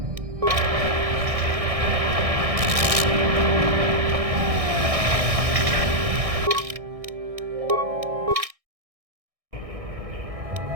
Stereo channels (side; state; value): left; late; 1.6 ms